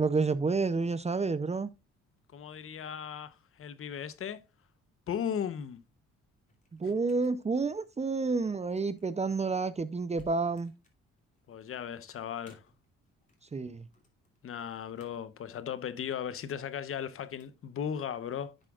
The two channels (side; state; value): both; normal; correlation 0.54